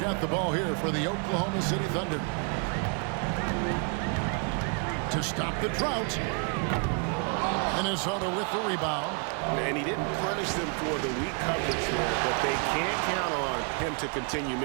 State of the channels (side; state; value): left; quieter; 36.8 dB